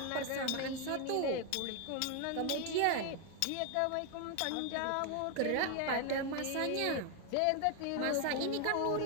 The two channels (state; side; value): different; both; correlation 0.01